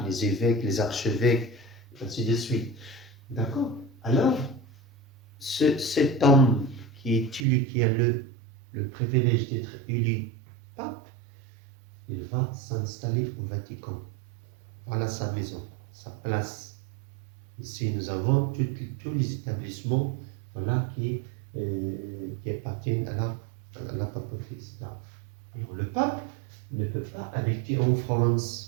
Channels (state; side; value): drops out; left; at 7.5 s